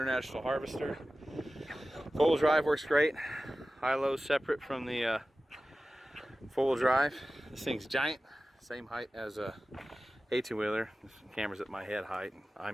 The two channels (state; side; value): normal; both; correlation 0.96